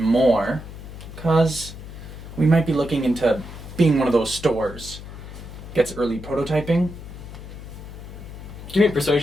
because we might be looking into being one of those stores. Gets early prototyping. Give me a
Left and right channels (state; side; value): noise; left; hum, 13 dB below the sound